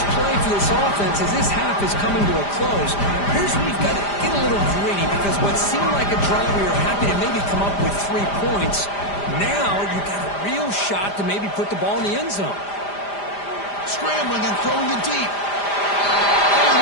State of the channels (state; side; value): late; right; 5.0 ms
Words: play for this offense as this half is coming to a close. Here's where you've got to get a little greedy, because what seemed like a drive where you're happy to maybe come up with 3 points, now you've got a real shot to maybe put the ball in the end zone. Scrambling and throwing it deep. All the